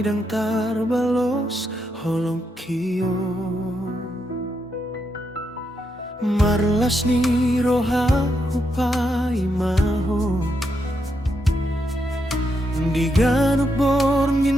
dang tarbalos holong kiyo marlas ni roha upay maho di ganok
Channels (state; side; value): normal; both; correlation 0.81